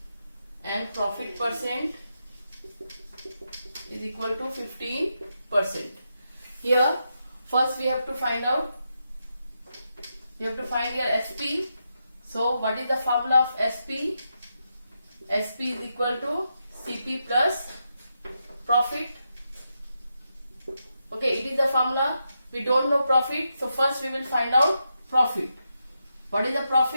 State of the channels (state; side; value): inverted; both; correlation -0.85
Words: and profit percent is equal to 15%. Here first we have to find out, we have to find here SP. So what is the formula of SP? SP is equal to CP plus profit. Okay, it is the formula. We don't know profit, so first we will find out profit. What is the